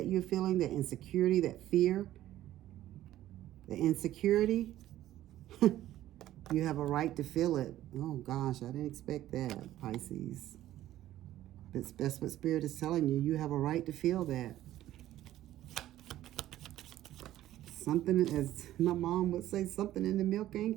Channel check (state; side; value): quieter; left; 13.7 dB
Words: you're feeling, the insecurity, that fear, the insecurity, you have a right to feel it. Oh gosh, I didn't expect that, Pisces. That's what Spirit is telling you. You have a right to feel that. Something, as my mom would say, something in the milk